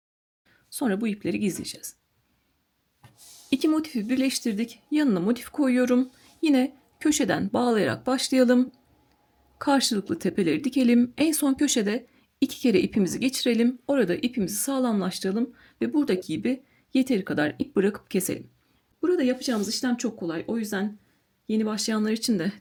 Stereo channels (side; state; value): both; identical; correlation 1.00